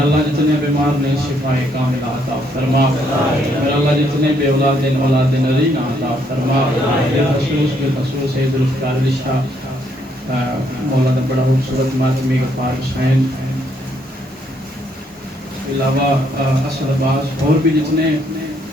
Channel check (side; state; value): both; normal; correlation 0.71